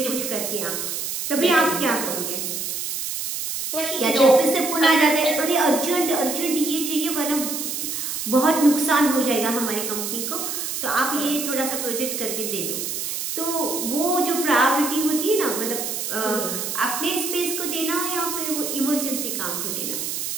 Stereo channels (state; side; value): noise; right; hiss, 3 dB below the sound